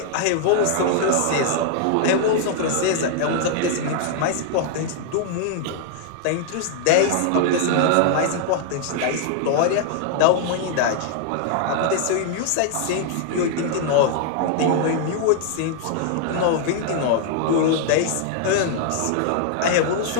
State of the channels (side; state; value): both; different; correlation 0.00